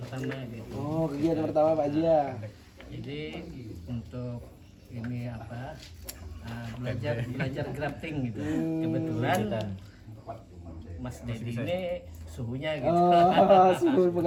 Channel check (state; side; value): identical; both; correlation 1.00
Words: gitu. Oh, kegiatan pertama Pak Haji ya. Jadi untuk ini apa belajar grafting gitu. Kebetulan Mas Dedi ini suhunya gitu. Oh, suhu